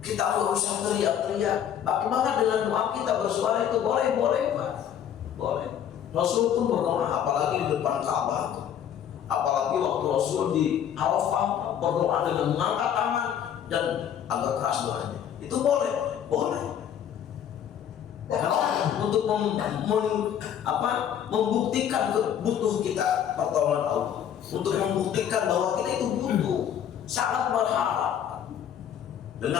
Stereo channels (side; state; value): right; quieter; 9.4 dB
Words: Kita nggak usah teriak-teriak. Bagaimana dengan doa kita bersuara itu boleh Pak, boleh. Rasul pun berdoa, apalagi di depan Ka'bah itu. Apalagi waktu Rasul di Arafah berdoa dengan mengangkat tangan dan agak keras doanya. Itu boleh. Karena untuk membuktikan butuh kita pertolongan Allah. Untuk membuktikan bahwa kita itu butuh, sangat berharap